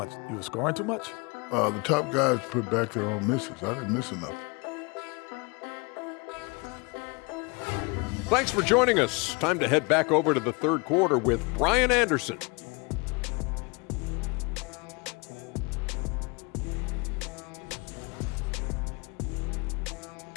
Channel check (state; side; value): quieter; right; 29.1 dB